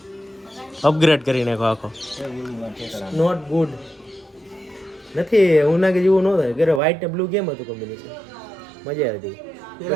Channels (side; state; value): left; drops out; at 6.8 s